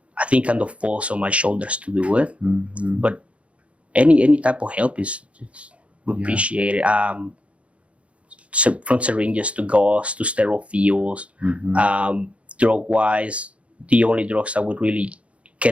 I think kind of falls on my shoulders to do it. But any type of help is appreciated. From syringes to gauze to sterile fields, drug wise, the only drugs that would really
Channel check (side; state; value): left; late; 0.062 ms